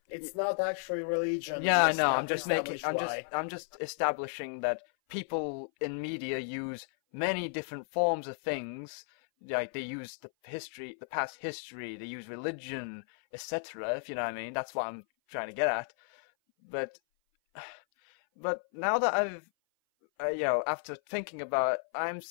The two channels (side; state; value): right; silent; 55 dB below the other